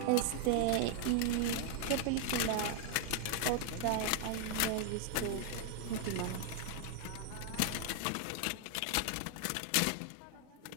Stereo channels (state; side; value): different; both; correlation 0.00